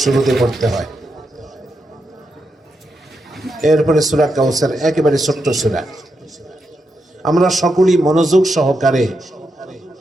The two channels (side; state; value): both; normal; correlation 0.84